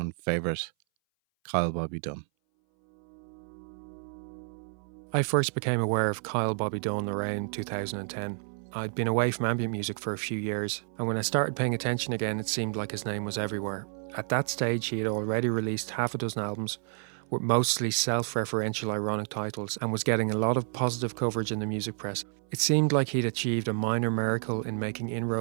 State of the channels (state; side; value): silent; left; 58 dB below the other